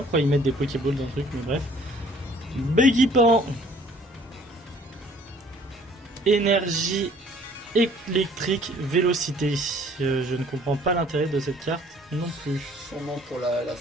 pourquoi ils mettent des Pokéballs dans le truc, mais bref. Béguipan. Énergie électrique vélocité. Je ne comprends pas l'intérêt de cette carte non plus. Sûrement pour la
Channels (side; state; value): both; normal; correlation 0.56